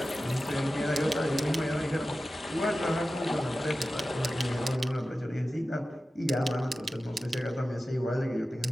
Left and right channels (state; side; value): normal; both; correlation 0.94